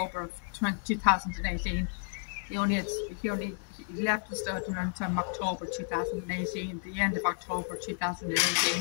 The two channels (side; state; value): right; silent; 57 dB below the other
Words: of 2018. He left the stud around October 2018, the end of October